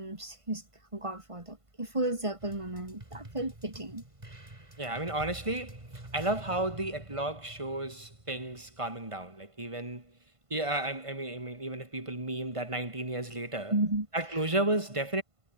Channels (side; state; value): left; late; 1.5 ms